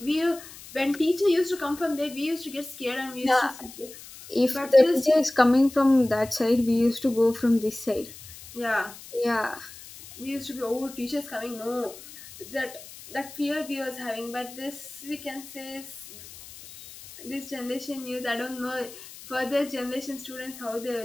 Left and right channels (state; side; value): noise; left; hiss, 16 dB below the sound